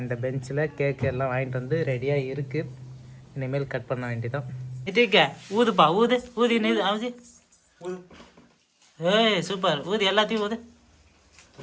இந்த பெஞ்சில் கேக்கு எல்லாம் வாங்கிட்டு வந்து ரெடியாக இருக்குது. இனிமேல் கட் பண்ண வேண்டியதான். இதுக்க ஊதுப்பா, ஊதி நீ ஆகுது. ஏய் சூப்பர், ஊதி எல்லாத்தையும் ஊது.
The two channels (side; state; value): both; identical; correlation 1.00